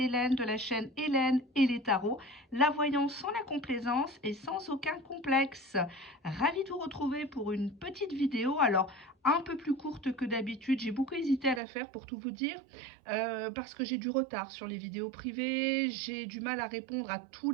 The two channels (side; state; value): left; drops out; at 11.6 s